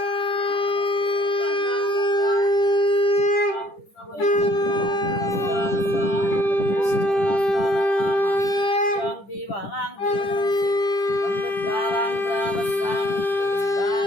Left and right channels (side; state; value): right; late; 10 ms